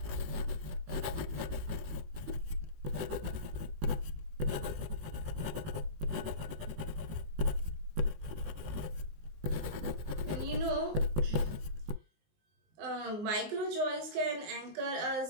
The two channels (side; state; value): left; late; 19 ms